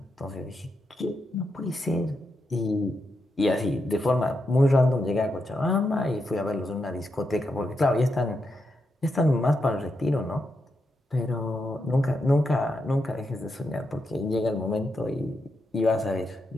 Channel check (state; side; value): normal; both; correlation 0.84